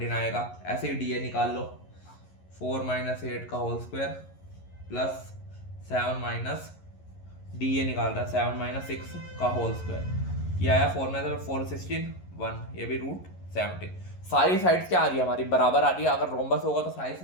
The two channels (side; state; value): right; late; 11 ms